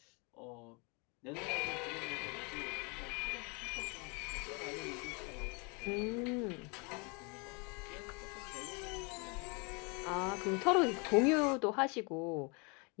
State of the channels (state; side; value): quieter; right; 31.8 dB